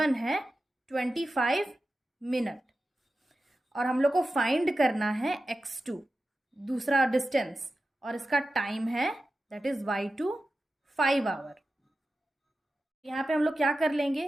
है 25 मिनट। और हम लोग को फाइंड करना है x2 दूसरा डिस्टेंस, और इसका टाइम है दैट इज y2 5 आवर। यहाँ पे हम लोग क्या कर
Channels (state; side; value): normal; both; correlation 0.93